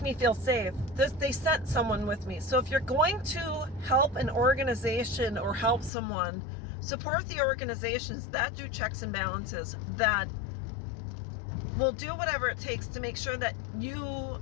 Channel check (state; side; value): drops out; right; at 5.9 s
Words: feel safe. They sent someone with me. So if you're going to help an organization or help someone, support the organizations that do checks and balances, that will do whatever it takes to make sure that you